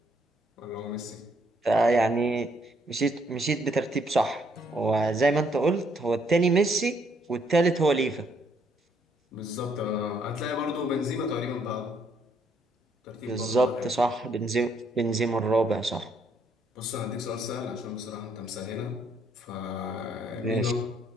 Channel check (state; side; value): normal; both; correlation 0.70